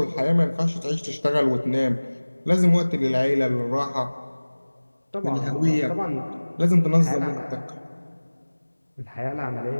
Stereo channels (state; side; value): inverted; both; correlation -1.00